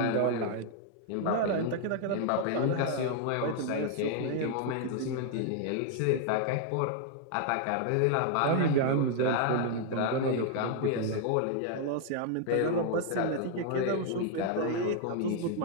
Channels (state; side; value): different; both; correlation 0.00